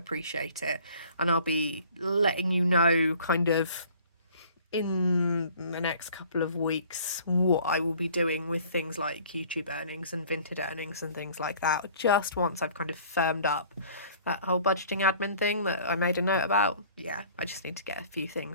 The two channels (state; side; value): inverted; both; correlation -0.52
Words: it, and I'll be letting you know kind of in the next couple of weeks what I will be doing with things like YouTube earnings and Vinted earnings and things like that, just once I've kind of firmed up that whole budgeting admin thing that I made a note about. Yeah, I just need to get a